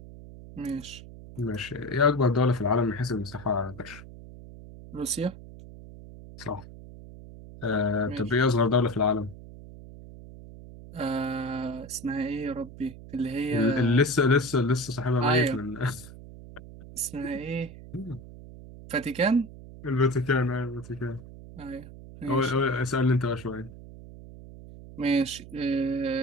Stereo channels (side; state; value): right; noise; hum, 16 dB below the sound